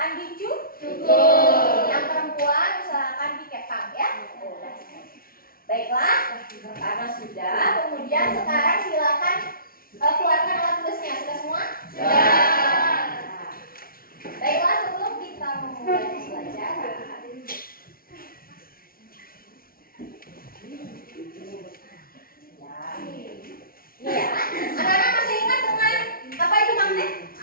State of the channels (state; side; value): late; right; 0.43 ms